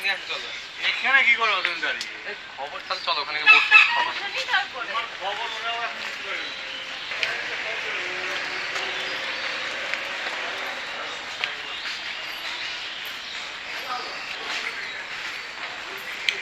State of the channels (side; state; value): both; identical; correlation 1.00